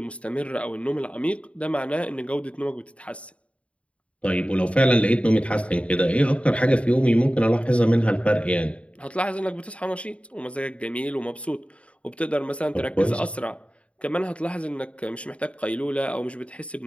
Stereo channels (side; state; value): right; late; 0.063 ms